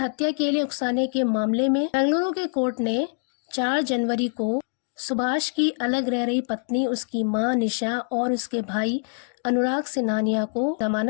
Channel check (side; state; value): right; silent; 62 dB below the other